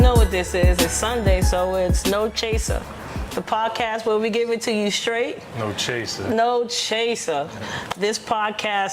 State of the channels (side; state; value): both; identical; correlation 1.00